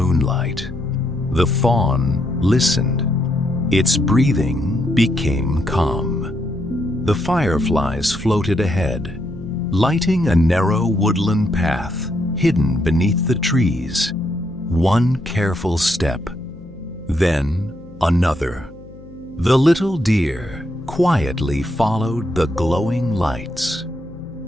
The fawn listened. Its breathing became calm. The fireflies floated ahead, lighting a narrow woodland path hidden beneath the trees. One careful step, then another. The little deer quietly followed the glowing lights.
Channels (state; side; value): noise; left; hum, 20 dB below the sound